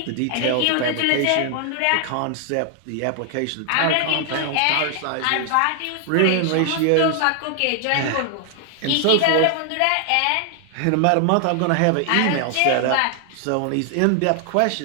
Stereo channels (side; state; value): both; different; correlation 0.00